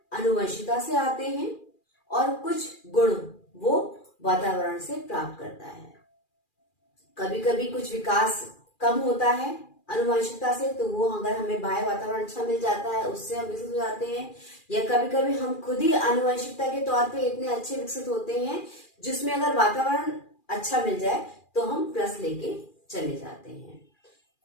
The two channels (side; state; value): right; late; 2.4 ms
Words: आनुवंशिकता से आते हैं और कुछ गुण वो वातावरण से प्राप्त करता है। कभी कभी कुछ विकास कम होता है आनुवंशिकता से, तो वो अगर हमें बाह्य वातावरण अच्छा मिल जाता है उससे हम विकसित हो जाते हैं, या कभी कभी हम खुद ही आनुवंशिकता के तौर पे इतने अच्छे विकसित होते हैं जिसमें अगर वातावरण अच्छा मिल जाए तो हम प्लस लेके चले जाते हैं।